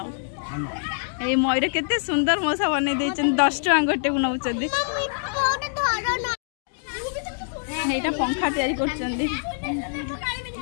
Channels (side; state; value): right; silent; digital silence